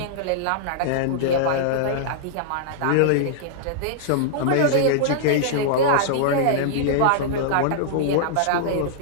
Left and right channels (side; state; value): both; different; correlation -0.01